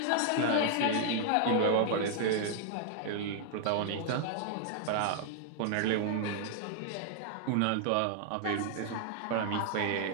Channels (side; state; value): both; different; correlation -0.01